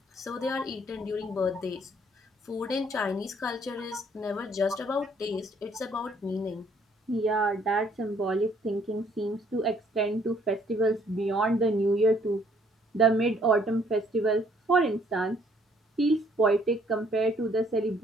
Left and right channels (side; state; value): both; normal; correlation 0.64